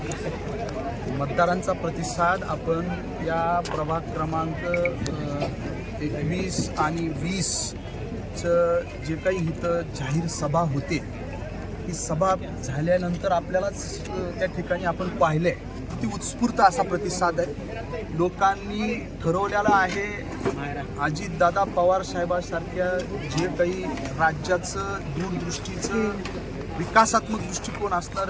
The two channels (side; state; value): both; identical; correlation 1.00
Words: मतदारांचा प्रतिसाद आपण या प्रभाग क्रमांक 21 आणि 20चं जे काही इथं जाहीर सभा होते, ही सभा झाल्यानंतर आपल्यालाच त्या ठिकाणी आपण पाहिले किती उत्स्फूर्त असा प्रतिसाद आहे. लोकांनी ठरवलेला आहे अजितदादा पवार साहेबांसारख्या जे काही राज्याचं दूरदृष्टीचं विकासात्मक दृष्टिकोन